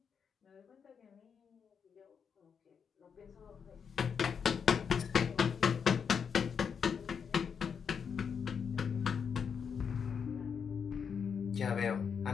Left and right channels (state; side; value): quieter; right; 6.7 dB